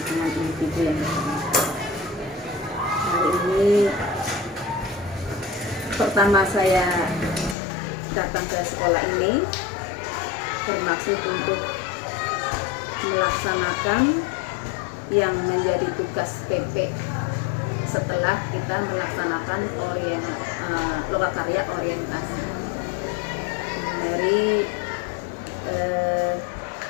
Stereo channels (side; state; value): right; drops out; at 7.6 s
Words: individu yang pertama. Hari ini pertama saya datang ke sekolah ini bermaksud untuk melaksanakan yang menjadi tugas PP setelah kita melaksanakan lokakarya orientasi. Dari